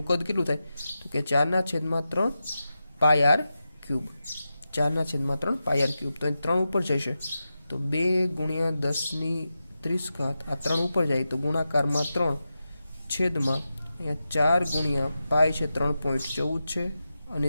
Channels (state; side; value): inverted; both; correlation -0.91